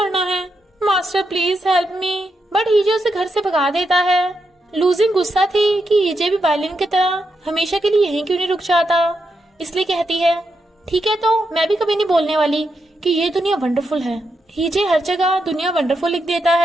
है। Master please help me. But हीजे उसे घर से भगा देता है। लूजिंग गुस्सा थी कि हीजे भी बायलिन की तरह हमेशा के लिए यहीं क्यों नहीं रुक जाता, इसलिए कहती है ठीक है तो मैं भी कभी नहीं बोलने वाली कि ये दुनिया वंडरफुल है। हीजे हर जगह दुनिया वंडरफुल लिख देता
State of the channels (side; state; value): both; normal; correlation 0.84